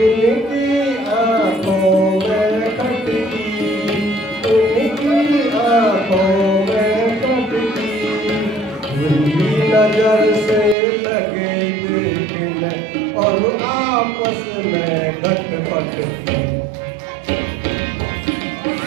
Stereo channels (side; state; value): left; drops out; at 10.8 s